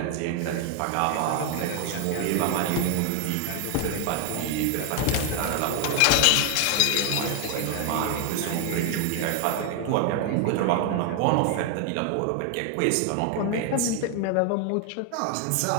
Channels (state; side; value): different; both; correlation 0.00